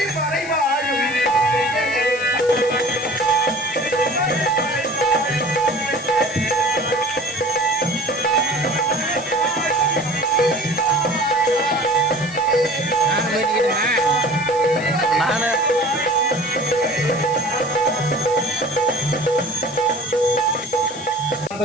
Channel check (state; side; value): noise; left; hiss, 17 dB below the sound